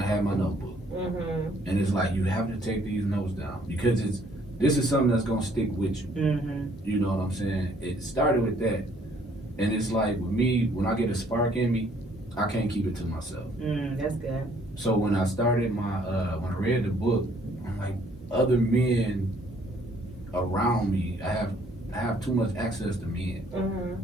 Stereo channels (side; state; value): both; normal; correlation 0.63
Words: I had my notebook. And it's like you have to take these notes down because this is something that's gonna stick with you. You know what I'm saying? It started with that, and it's like with me, when I get a spark in me, I can't keep it to myself. That's good. So when I started when I read the book, I'm like, other men around me, I have too much access to men. Mm-hmm.